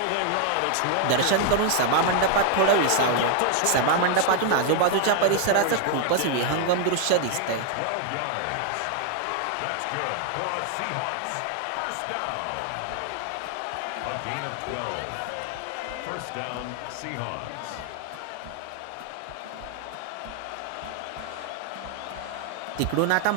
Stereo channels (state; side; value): different; both; correlation 0.00